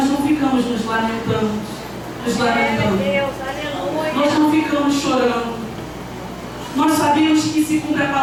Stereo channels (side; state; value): both; identical; correlation 1.00